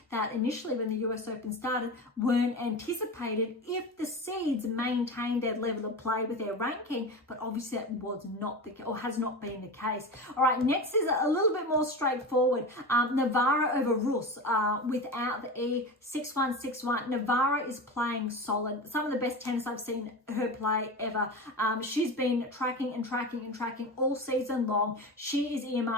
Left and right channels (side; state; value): both; normal; correlation 0.26